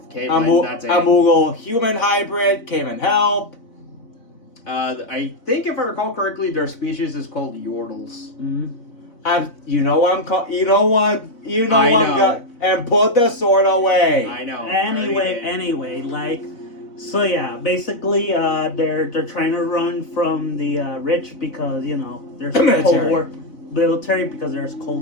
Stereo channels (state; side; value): late; right; 4.0 ms